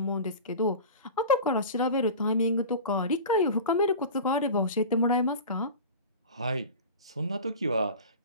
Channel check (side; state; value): both; inverted; correlation -0.34